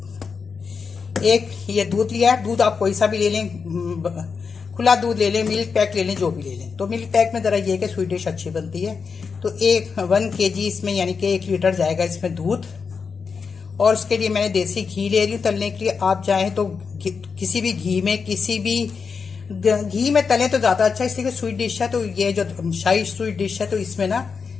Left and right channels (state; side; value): quieter; right; 5.5 dB